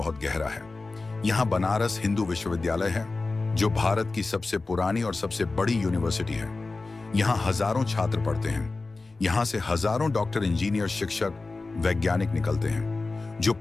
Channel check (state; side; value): quieter; right; 3.6 dB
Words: गहरा है। यहाँ बनारस हिंदू विश्वविद्यालय है, जो भारत की सबसे पुरानी और सबसे बड़ी यूनिवर्सिटी है। यहाँ हजारों छात्र पढ़ते हैं। यहाँ से हजारों डॉक्टर, इंजीनियर, शिक्षक, वैज्ञानिक निकलते हैं, जो